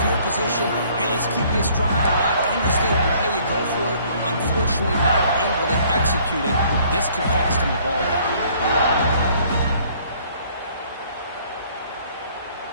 field position, hey, let's keep this drive alive. I understand why you go for it. Unfortunately, not able to execute it. This could cost him the ball game.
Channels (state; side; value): inverted; both; correlation -0.59